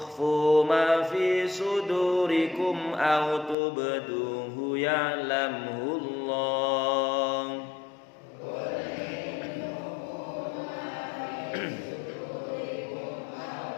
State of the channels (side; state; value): right; drops out; at 3.6 s